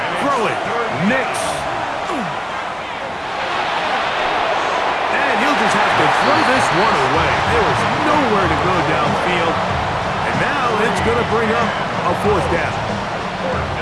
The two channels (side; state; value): both; identical; correlation 1.00